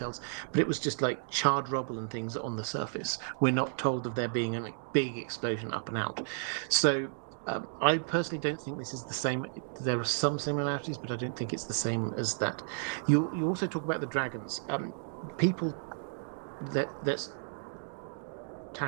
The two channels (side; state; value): left; silent; digital silence